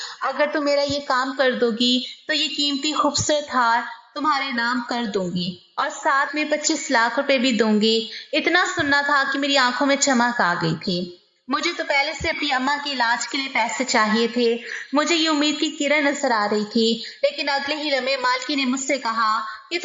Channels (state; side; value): identical; both; correlation 1.00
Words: अगर तुम मेरा ये काम कर दोगी तो ये कीमती खूबसूरत हार तुम्हारे नाम कर दूंगी और साथ में 25 लाख रुपए भी दूंगी। इतना सुनना था कि मेरी आंखों में चमक आ गई थी। मुझे तो पहले से अपनी अम्मा के इलाज के लिए पैसे चाहिए थे। मुझे ये उम्मीद की किरण नजर आ रही थी, लेकिन अगले ही लम्हे मालकी ने मुझसे कहा कि